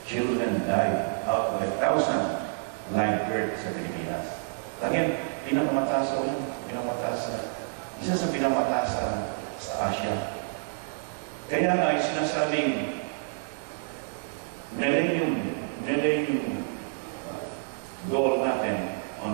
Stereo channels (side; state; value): left; silent; digital silence